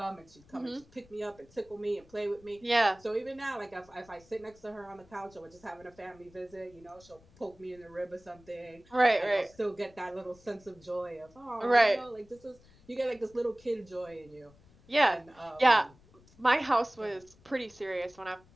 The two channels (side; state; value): left; noise; rumble, 27 dB below the sound